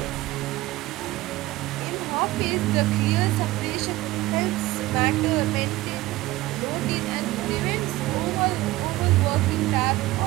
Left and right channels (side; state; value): left; quieter; 18.1 dB